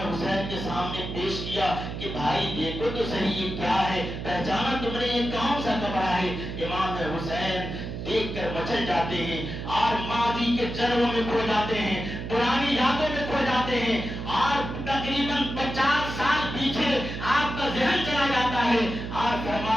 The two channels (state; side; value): noise; right; hum, 7 dB below the sound